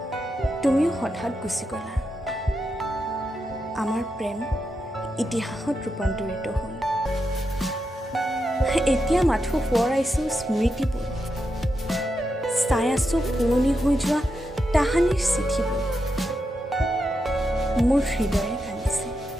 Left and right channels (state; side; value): normal; both; correlation 0.86